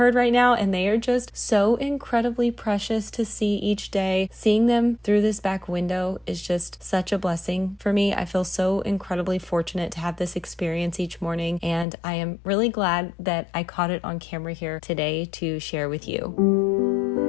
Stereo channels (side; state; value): right; drops out; at 11.9 s